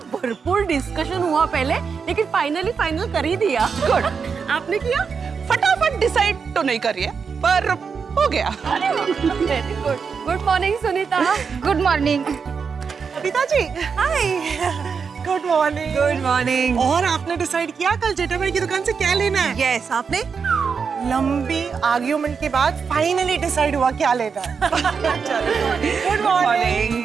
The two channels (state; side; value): quieter; left; 5.8 dB